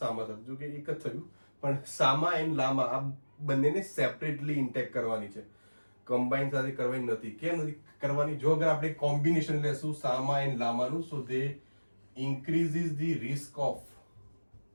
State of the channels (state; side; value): inverted; both; correlation -1.00